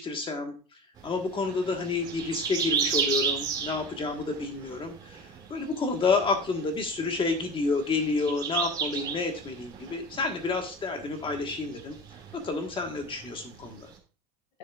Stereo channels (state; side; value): normal; both; correlation 0.33